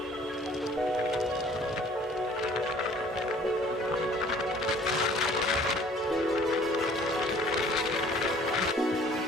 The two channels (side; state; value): both; normal; correlation 0.54